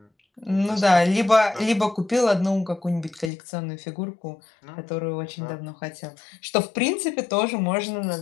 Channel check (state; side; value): drops out; right; at 3.3 s